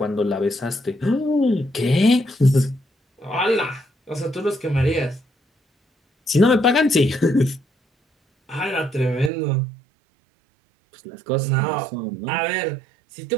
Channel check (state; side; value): drops out; left; at 9.3 s